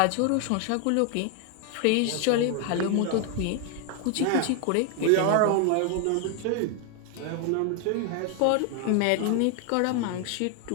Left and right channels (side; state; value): both; different; correlation 0.00